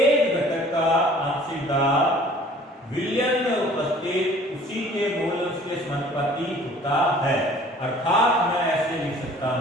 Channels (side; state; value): both; normal; correlation 0.51